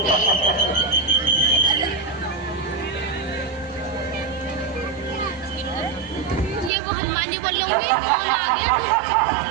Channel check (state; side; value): drops out; left; at 6.7 s